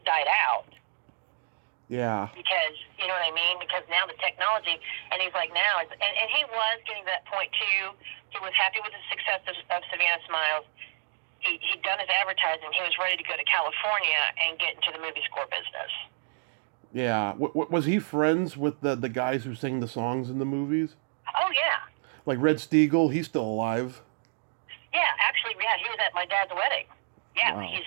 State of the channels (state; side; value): silent; left; digital silence